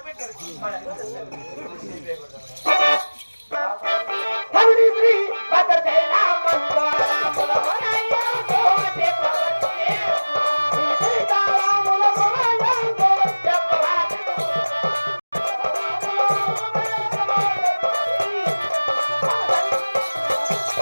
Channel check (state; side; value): inverted; both; correlation -1.00